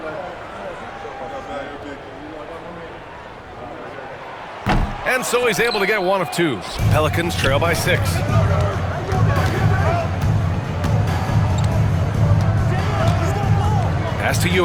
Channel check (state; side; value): identical; both; correlation 1.00